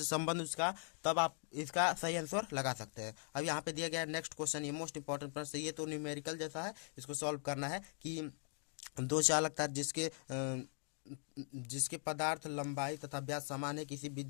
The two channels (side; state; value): right; silent; 51 dB below the other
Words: संबंध उसका, तब आप इसका सही आंसर लगा सकते हैं। अब यहाँ पे दिया गया नेक्स्ट क्वेश्चन, ये मोस्ट इंपॉर्टेंट प्रश्न, ये तो न्यूमेरिकल जैसा है, इसको सॉल्व करना है कि 2 चालक तार जिसके पदार्थ लंबाई तथा व्यास समान है, किसी